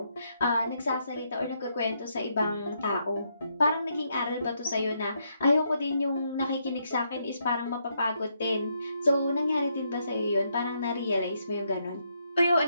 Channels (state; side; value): inverted; both; correlation -0.77